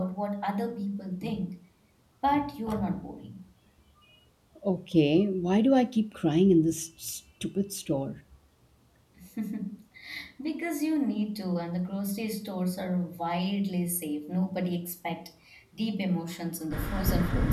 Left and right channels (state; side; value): identical; both; correlation 1.00